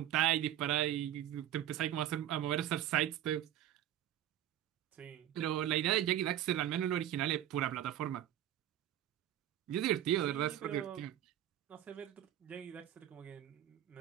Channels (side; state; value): left; quieter; 11.7 dB